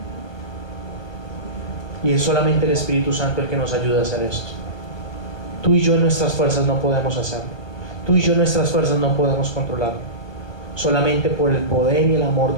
Y es solamente el Espíritu Santo el que nos ayuda a hacer esto. Tú y yo en nuestras fuerzas no podemos hacerlo. Tú y yo en nuestras fuerzas no podemos controlarlo. Solamente por el poder y el amor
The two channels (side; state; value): right; late; 1.2 ms